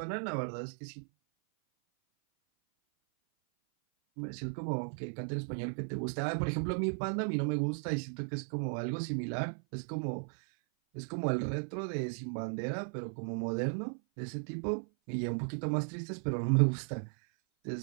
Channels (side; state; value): left; silent; 54 dB below the other